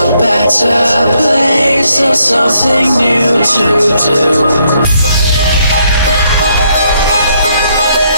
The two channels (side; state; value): both; inverted; correlation -0.73